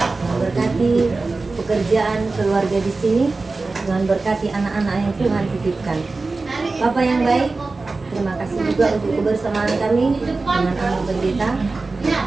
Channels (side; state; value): left; quieter; 3.7 dB